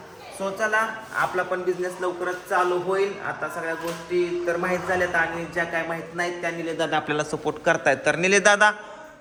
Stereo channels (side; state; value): both; identical; correlation 1.00